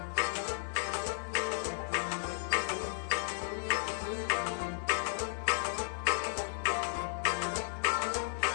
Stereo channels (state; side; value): silent; right; 55 dB below the other